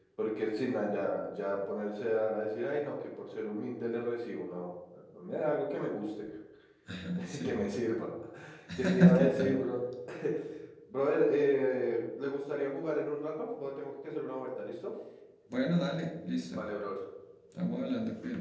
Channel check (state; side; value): identical; both; correlation 1.00